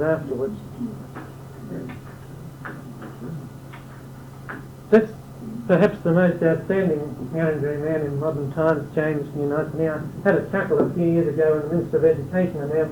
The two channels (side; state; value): both; identical; correlation 1.00